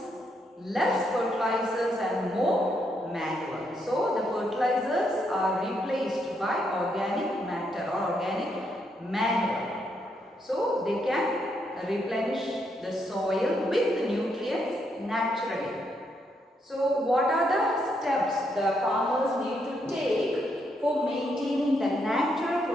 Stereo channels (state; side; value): normal; both; correlation 0.77